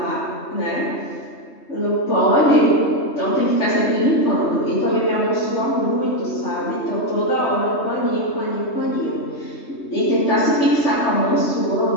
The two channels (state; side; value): late; right; 3.2 ms